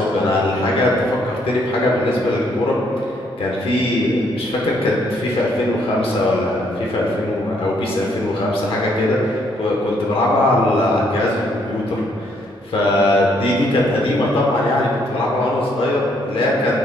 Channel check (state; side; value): normal; both; correlation 0.69